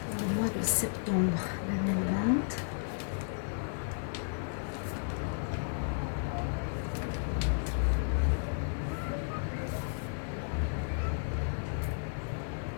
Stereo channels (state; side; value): silent; right; digital silence